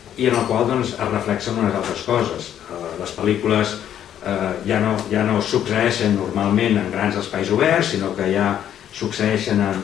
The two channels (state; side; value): quieter; right; 10.3 dB